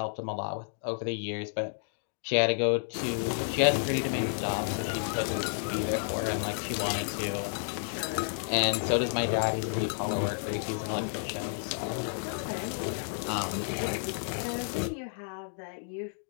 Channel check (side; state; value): right; silent; digital silence